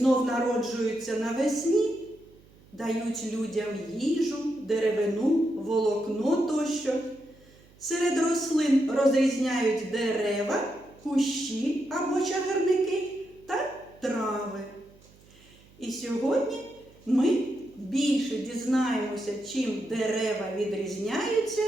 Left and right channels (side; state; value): right; noise; hum, 27 dB below the sound